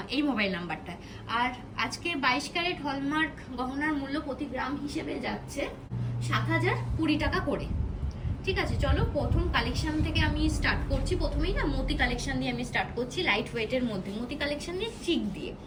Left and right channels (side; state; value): both; identical; correlation 1.00